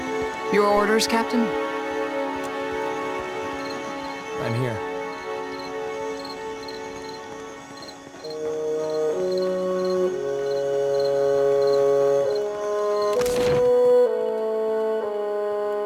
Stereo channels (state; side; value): identical; both; correlation 1.00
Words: Your orders, Captain? I'm here.